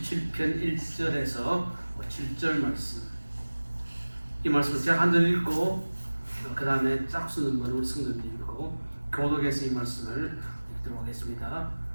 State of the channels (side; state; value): both; inverted; correlation -1.00